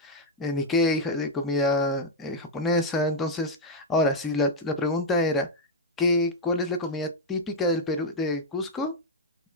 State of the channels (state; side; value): normal; both; correlation -0.02